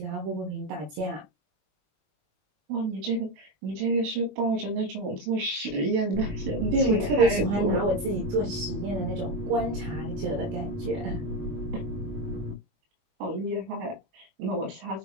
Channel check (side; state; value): left; late; 19 ms